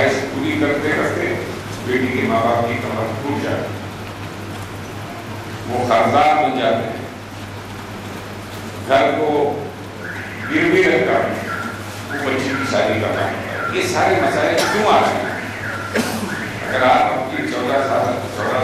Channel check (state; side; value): identical; both; correlation 1.00